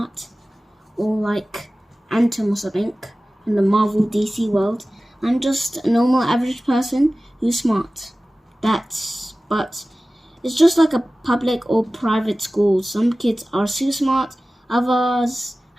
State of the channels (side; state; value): both; normal; correlation 0.97